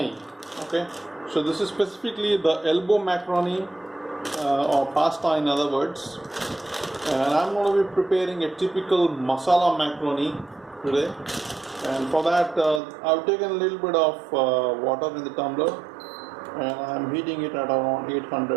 Okay, so this is specifically the elbow macaroni or pasta, in other words, and I'm going to be preparing a typical masala macaroni today. And for that, I've taken a little bit of water in the tumbler, and I'm heating it at around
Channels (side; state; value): left; drops out; at 12.8 s